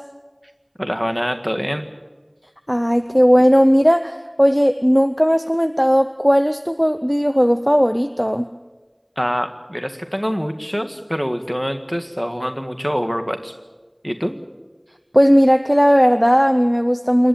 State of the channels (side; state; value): both; identical; correlation 1.00